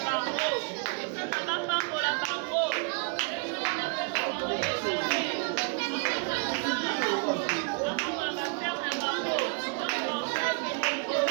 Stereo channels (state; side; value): quieter; left; 37.5 dB